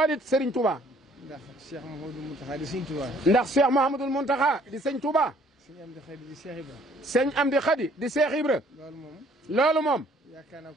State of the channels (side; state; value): both; normal; correlation 0.60